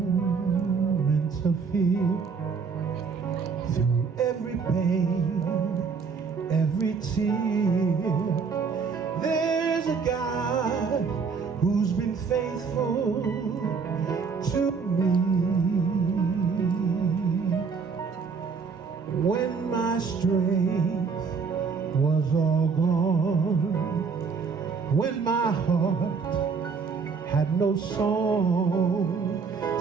of fear, through every pain, every tear, there's a God who's been faithful to me. When my strength was all gone, when my heart had no song,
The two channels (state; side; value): quieter; left; 5.4 dB